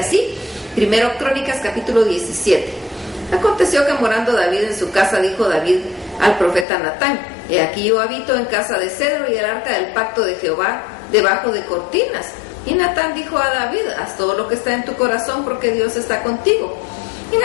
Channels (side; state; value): right; drops out; at 6.7 s